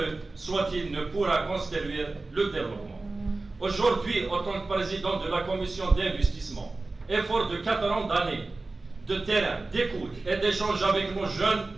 soit-il, ne pourra construire le développement. Aujourd'hui, en tant que président de la commission d'investissement, effort de 4 ans d'années, de terrain, d'écoute et d'échange avec nos jeunes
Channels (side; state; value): left; quieter; 3.3 dB